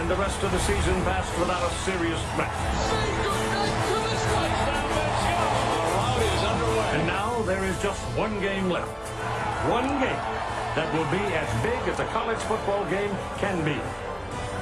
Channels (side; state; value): both; identical; correlation 1.00